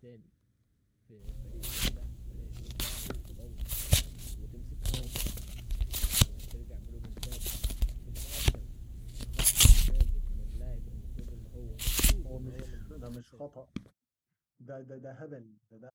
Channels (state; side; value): identical; both; correlation 1.00